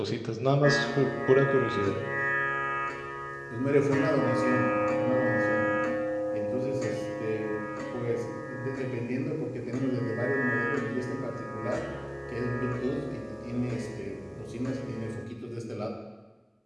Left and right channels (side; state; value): both; identical; correlation 1.00